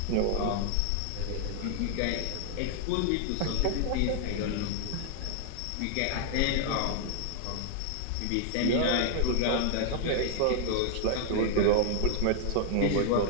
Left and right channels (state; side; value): different; both; correlation 0.00